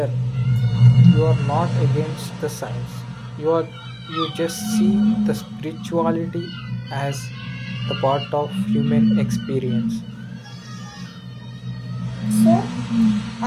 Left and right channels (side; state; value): both; identical; correlation 1.00